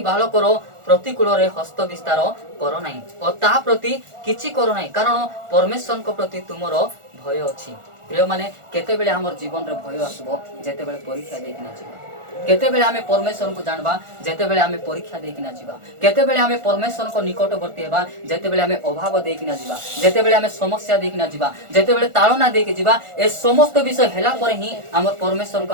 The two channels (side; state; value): left; late; 1.4 ms